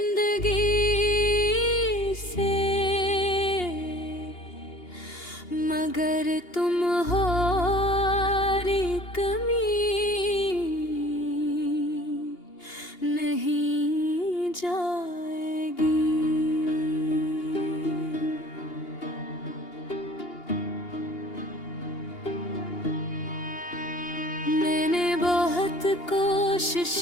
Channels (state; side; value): late; right; 2.8 ms